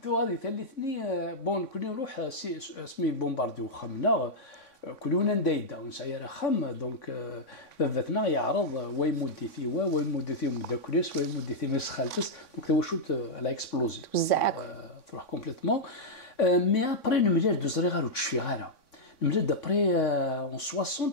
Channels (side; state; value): right; late; 3.5 ms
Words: تو غادي ثلثني بون كوني نروح اسمي بومبارديو خمنا كلنا ندايدا ونسعير خم دونك بابتنا يعرض ويمودي في ويمودي في مداكريس ويمودي في مسخالتس دونك تو شوت على اكسبلوزي تروح كومبليتمون مي ابري نملير دوزري غير وتشفي غيرها نملير دابري اون 60